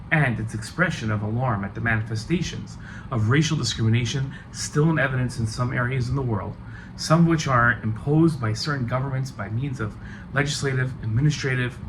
and its expression of alarm at the manifestations of racial discrimination still in evidence in some areas in the world, some of which are imposed by certain governments by means of legislative, administrative,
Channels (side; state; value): both; identical; correlation 1.00